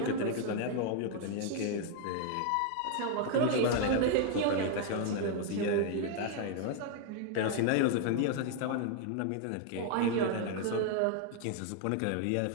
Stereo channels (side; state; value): both; different; correlation 0.00